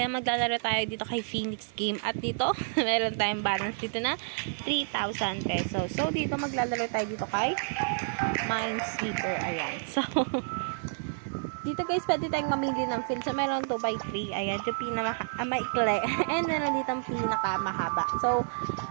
maglalaro tayo dito kay Phoenix Game. At dito, meron tayong balance dito na 3,000 pesos. So dito maglalaro tayo dito kay Minesweeper. Ayan. So, dito guys, pwede tayong mamili ng field. So, meron 2x3. Ayan, yung pinamaikli. And meron dito ang pinakamahaba. So,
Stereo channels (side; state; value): left; silent; digital silence